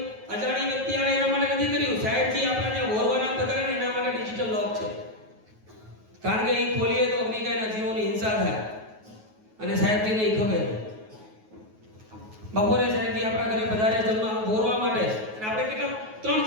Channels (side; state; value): left; late; 9.3 ms